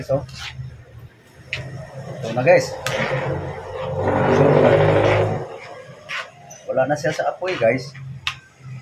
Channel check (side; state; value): both; identical; correlation 1.00